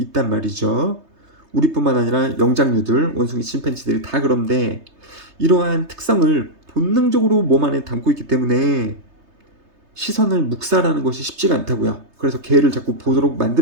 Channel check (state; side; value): late; left; 3.3 ms